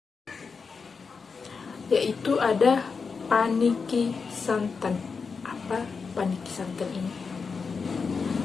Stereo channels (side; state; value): right; quieter; 5.1 dB